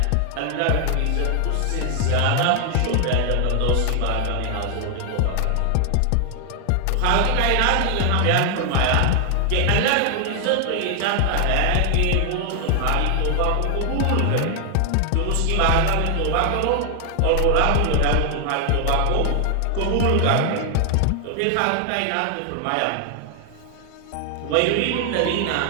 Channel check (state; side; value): different; both; correlation 0.00